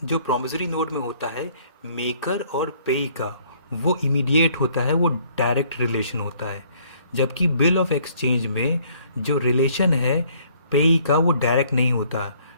जो प्रॉमिसरी नोट में होता है मेकर और पेई का, वो इमीडिएट होता है, वो डायरेक्ट रिलेशन होता है, जबकि बिल ऑफ एक्सचेंज में जो रिलेशन है पेई का वो डायरेक्ट नहीं होता,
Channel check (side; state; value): both; inverted; correlation -0.61